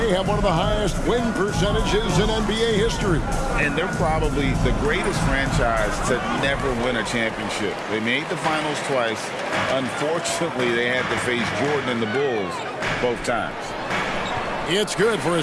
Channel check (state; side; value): identical; both; correlation 1.00